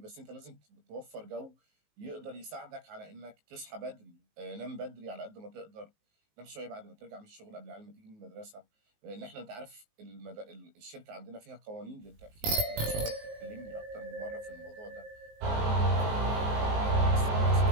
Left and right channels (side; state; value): left; late; 19 ms